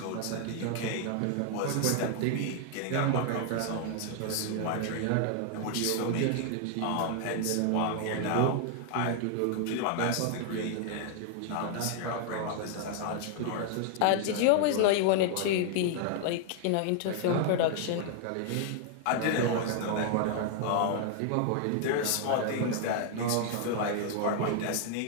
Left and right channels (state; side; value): different; both; correlation 0.00